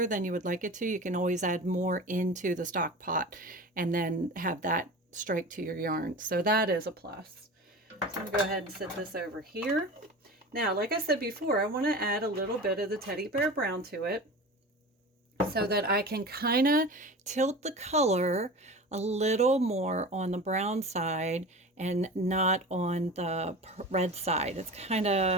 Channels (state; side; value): normal; both; correlation 0.33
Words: than you would like it to, you can always add more into the stock pot and then have that strike to your yarn. So that is a plus. So I'm going to go ahead and set this over here. Now, like I said before, I want to add a little bit of the Teddy Bear Brown to it so that I can kind of tilt the color a little more on the brown side and not on the red side. It's kind